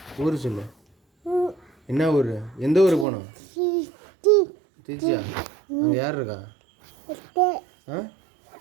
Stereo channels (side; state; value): left; drops out; at 3.1 s